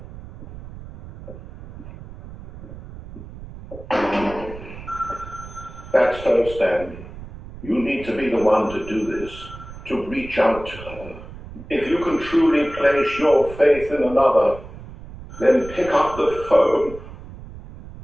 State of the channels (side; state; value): right; noise; rumble, 14 dB below the sound